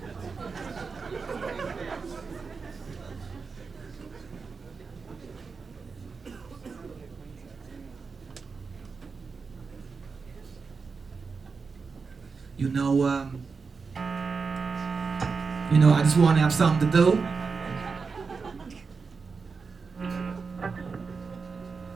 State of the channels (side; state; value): left; quieter; 4.9 dB